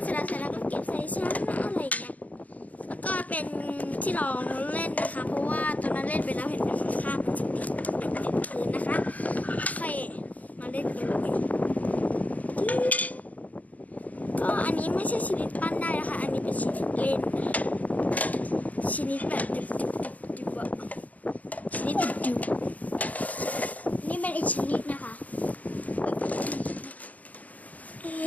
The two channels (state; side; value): late; right; 0.074 ms